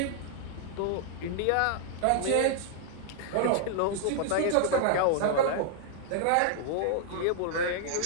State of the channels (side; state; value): both; different; correlation -0.01